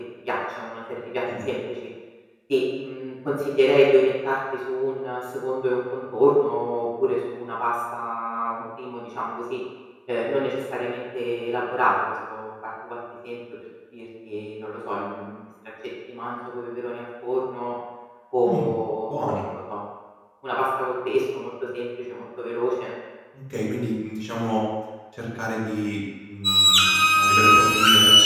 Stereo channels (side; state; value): both; identical; correlation 1.00